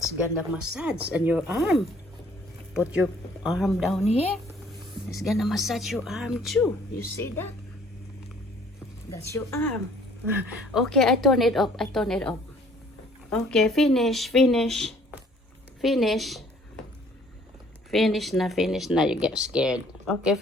gonna massage, and your arm. Put your arm down here. It's gonna massage your arm too. You see that? That's your arm. Okay, I turn it up. Okay, finish na. You get scared. Okay,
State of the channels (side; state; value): both; normal; correlation 0.58